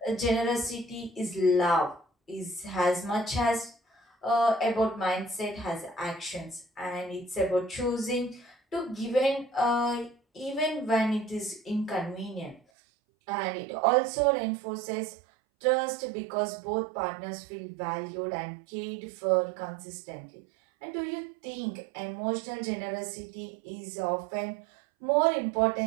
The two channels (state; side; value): drops out; left; at 12.6 s